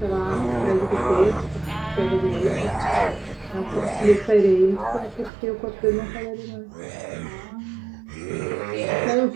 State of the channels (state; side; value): drops out; left; at 5.3 s